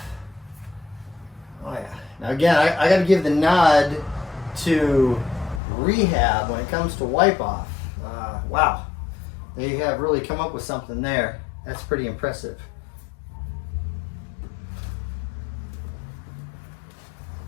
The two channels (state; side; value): drops out; right; at 5.6 s